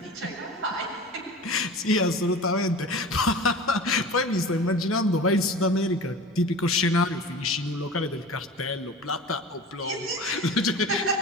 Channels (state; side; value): normal; both; correlation 0.36